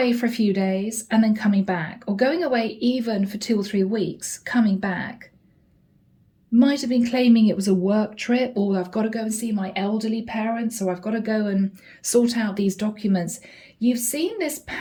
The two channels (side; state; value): both; identical; correlation 1.00